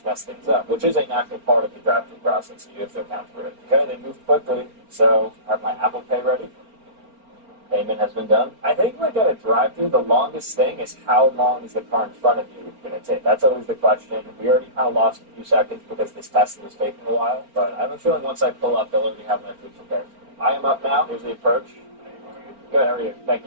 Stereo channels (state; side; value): late; left; 4.4 ms